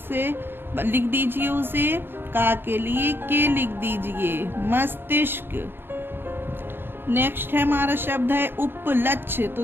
लिख दीजिए उसे। का के लिए के लिख दीजिए, मस्तिष्क। नेक्स्ट है हमारा शब्द है उपलक्ष्य। तो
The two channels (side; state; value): left; late; 0.10 ms